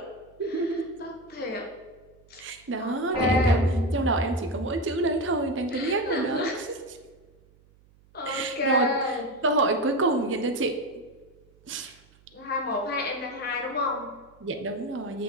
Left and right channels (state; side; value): noise; right; hum, 29 dB below the sound